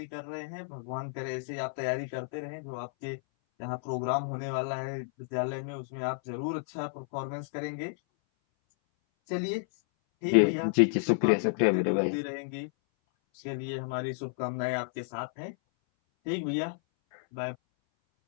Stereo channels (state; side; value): silent; right; 57 dB below the other